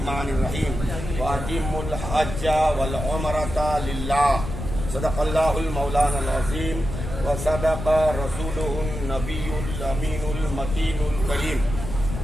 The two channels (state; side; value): noise; left; rumble, 6 dB below the sound